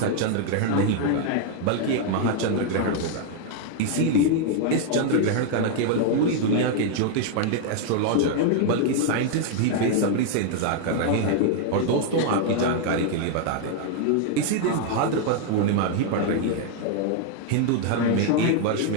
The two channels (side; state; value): both; different; correlation 0.00